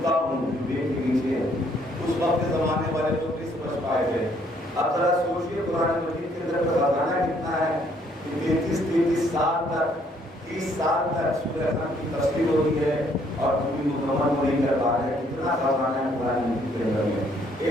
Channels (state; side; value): normal; both; correlation 0.66